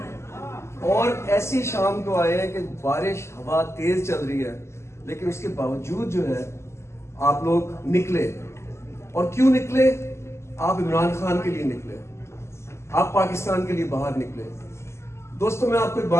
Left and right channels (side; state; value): right; late; 0.13 ms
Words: اور ایسی شام کو آئے ہیں کہ بارش ہوا تیز چل رہی ہے، لیکن اس کے باوجود جو ہے آپ لوگ نکلے. اور کیوں نکلے؟ آپ عمران خان کے لیے نکلے، آپ پاکستان کے لیے باہر نکلے. دوستوں میں آپ کو ایک